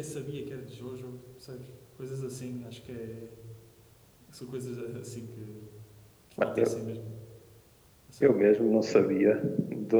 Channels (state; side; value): identical; both; correlation 1.00